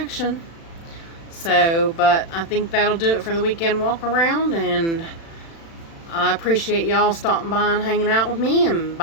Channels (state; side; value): late; right; 36 ms